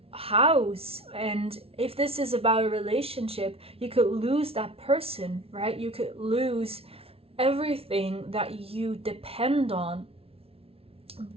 house. And if this is about a relationship, you could lose that person, right? You could lose everything that you depend on.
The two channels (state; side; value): late; left; 0.28 ms